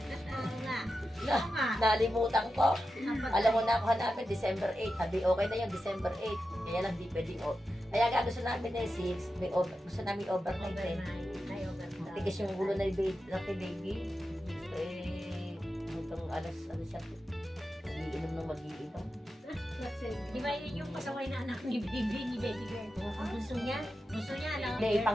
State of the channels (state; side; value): normal; both; correlation 0.91